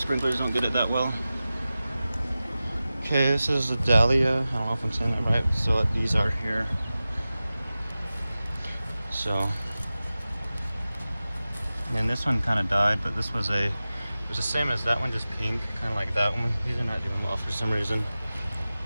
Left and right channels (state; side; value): inverted; both; correlation -0.95